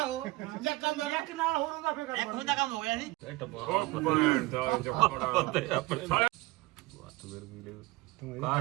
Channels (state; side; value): quieter; left; 20.7 dB